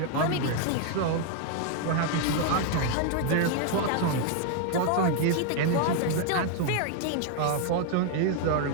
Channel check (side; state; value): both; different; correlation 0.00